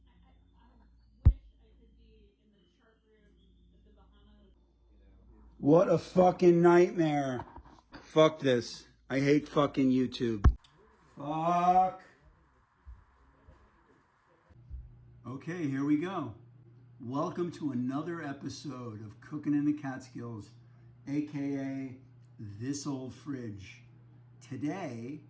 What a fucking nightmare. Fuck this. I hate fucking YouTube. Fuck. Okay, here we go. Welcome to another episode of Cooking in the Catskills, aka This Old Fridge. Today,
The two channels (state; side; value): identical; both; correlation 1.00